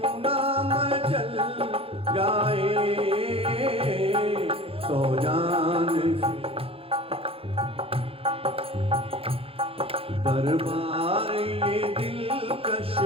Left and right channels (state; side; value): late; left; 0.27 ms